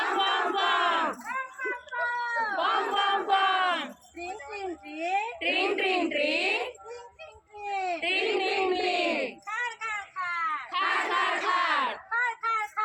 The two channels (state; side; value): identical; both; correlation 1.00